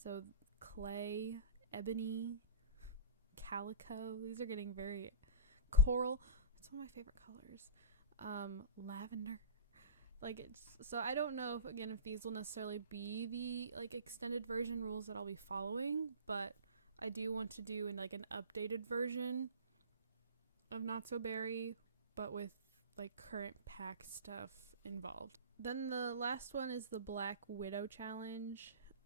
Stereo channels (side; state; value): both; inverted; correlation -0.35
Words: clay, ebony, calico. These are getting very coral. It's one of my favorite colors. Lavender. Like it's so I don't know if these will necessarily be the like extended version rules that I'll be following, but I do want to do an updated version of Not So Berry, but with like current pack stuff involved. Then the last one is the Black Widow challenge,